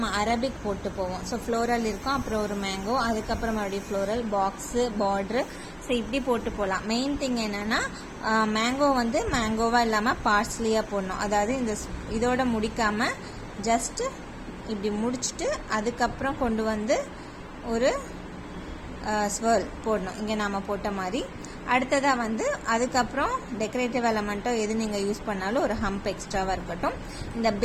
அரபிக் போட்டு போவோம். ஸோ ஃப்ளோரல் இருக்கும், அப்புறம் ஒரு மேங்கோ, அதுக்கப்புறம் மறுபடியும் ஃப்ளோரல், பாக்ஸு, பார்ட்ரு, ஸோ இப்படி போட்டு போகலாம். மெயின் திங் என்னென்னா மேங்கோ வந்து மேங்கோவாக இல்லாமல் பார்ஸ்லியாக போடணும். அதாவது இதோட முடிக்காமல் ஜஸ்ட்டு இப்படி முடிச்சுட்டு அதுக்கப்புறம் கொண்டு வந்து ஒரு ஸ்வர்ல் போடணும், இங்கே நாம் போட்ட மாதிரி. அடுத்ததாக வந்து அதுக்கப்புறம் டெக்கரேட்டிவ் எலமெண்ட்டோ எது நீங்கள் யூஸ் பண்ணாலும் ஒரு ஹம்ப் எக்ஸ்ட்ராவாக இருக்கட்டும். இந்த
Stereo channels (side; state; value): both; identical; correlation 1.00